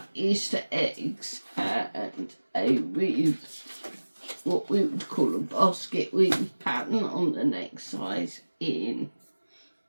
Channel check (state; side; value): inverted; both; correlation -1.00